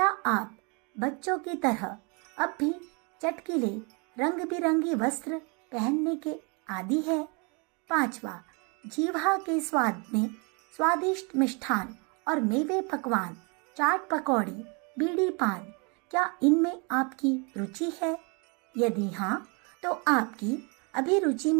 आप बच्चों की तरह अब भी चटकीले रंग बिरंगी वस्त्र पहनने के आदी है? पांचवा, जीवा के स्वाद में स्वादिष्ट मिष्ठान और मेवे पकवान, चाट पकौड़ी, बीड़ी पान, क्या इनमें आपकी रुचि है? यदि हाँ, तो आपकी अभिरुचि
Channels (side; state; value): left; quieter; 32.6 dB